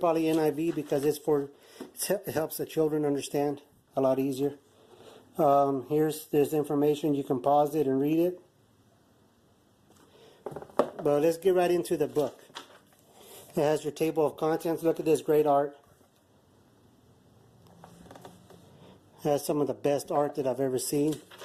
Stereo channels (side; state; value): both; identical; correlation 1.00